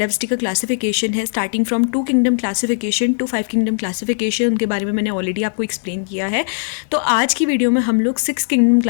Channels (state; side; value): silent; right; digital silence